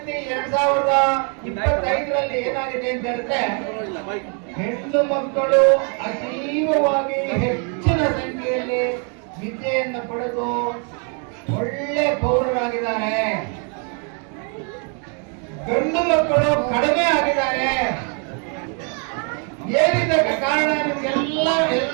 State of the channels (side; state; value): left; quieter; 39.5 dB